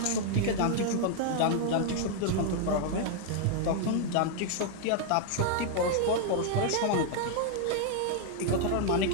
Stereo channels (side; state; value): both; different; correlation 0.00